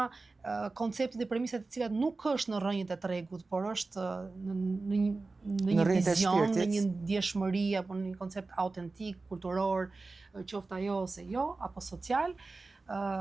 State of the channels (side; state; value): left; quieter; 3.6 dB